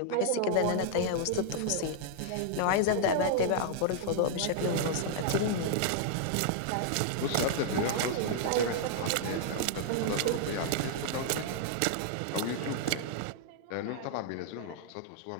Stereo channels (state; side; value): different; both; correlation -0.01